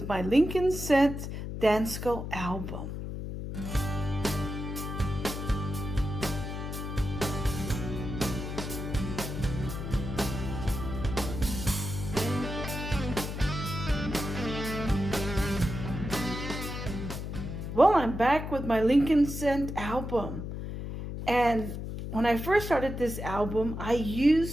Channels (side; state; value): left; noise; hum, 6 dB below the sound